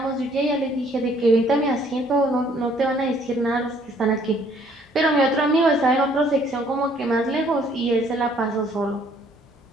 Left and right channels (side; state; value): both; normal; correlation 0.62